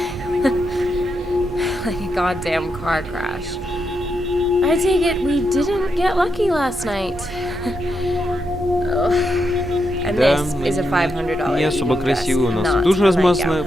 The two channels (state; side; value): normal; both; correlation 0.83